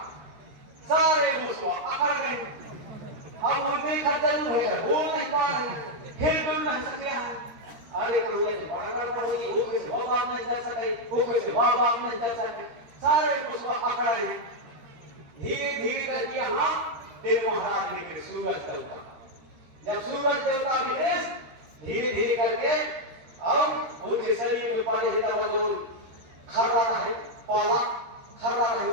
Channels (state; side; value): late; left; 13 ms